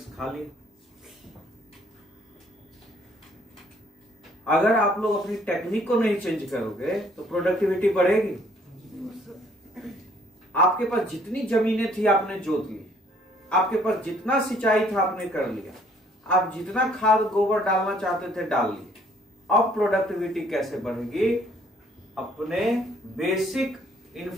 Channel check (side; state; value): both; normal; correlation 0.62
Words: खा लिया। अगर आप लोग अपनी टेक्निक को नहीं चेंज करोगे तो प्रोडक्टिविटी बढ़ेगी। आपके पास जितनी जमीनें थी आपने जोत ली, आपके पास जितना सिंचाई था आपने कर लिया, आप जितना खाद गोबर डालना चाहते थे डाल लिए। अब प्रोडक्टिविटी कैसे बढ़ेगी? अपने बेसिक